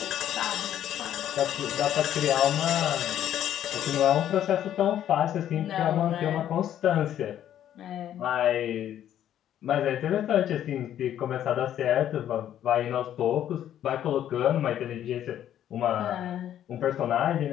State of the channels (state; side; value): quieter; right; 10.9 dB